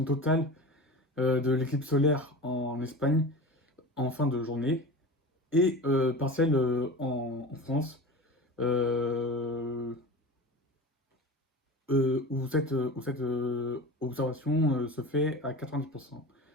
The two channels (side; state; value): both; normal; correlation 0.32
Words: totale de l'éclipse solaire en Espagne en fin de journée et partielle en France, euh, où cette observation se fait à 90%